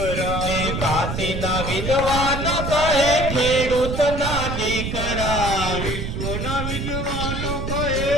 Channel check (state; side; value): noise; right; rumble, 3 dB below the sound